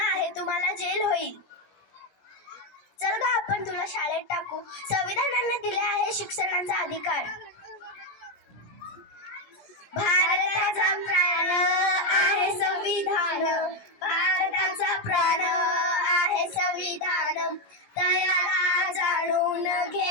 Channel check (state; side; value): late; right; 17 ms